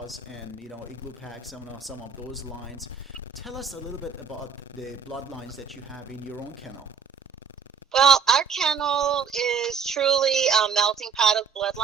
and, Igloo Pack, some of those lines. Tell us a little bit about the bloodlines that you have in your own kennel. Well, our kennel is truly a melting pot of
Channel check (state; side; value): quieter; left; 6.2 dB